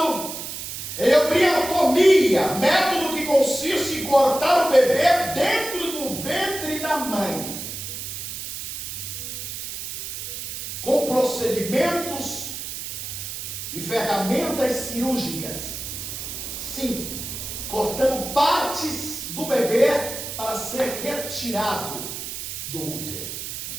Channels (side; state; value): right; noise; hiss, 7 dB below the sound